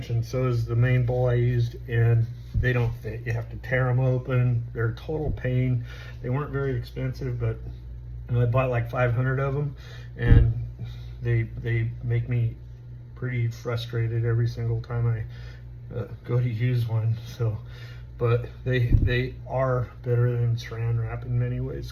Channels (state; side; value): identical; both; correlation 1.00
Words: and so is the main bowl I used, and they don't fit. You have to tear them open. They're a total pain. They weren't very expensive, but I bought like 500 of them, and they make me pretty frustrated every single time I go to use one. So, but they are better than Saran wrap in many ways,